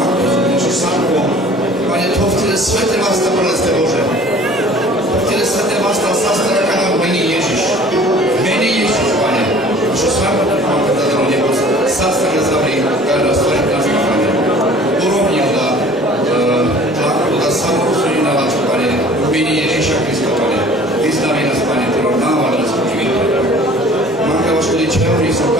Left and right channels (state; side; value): noise; right; rumble, 30 dB below the sound